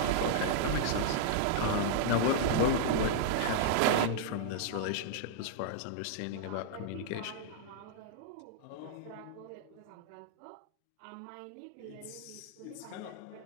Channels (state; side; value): different; both; correlation -0.02